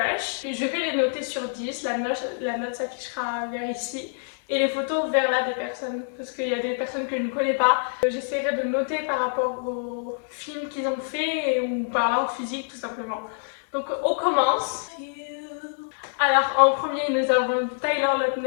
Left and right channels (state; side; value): silent; right; 61 dB below the other